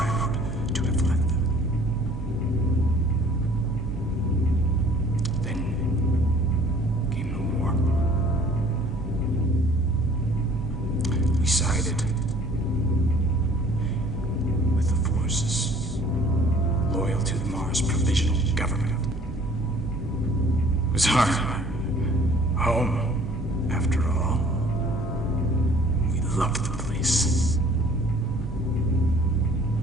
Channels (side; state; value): both; normal; correlation 0.53